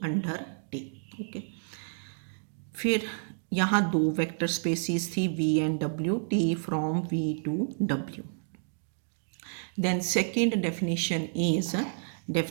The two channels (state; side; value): silent; left; digital silence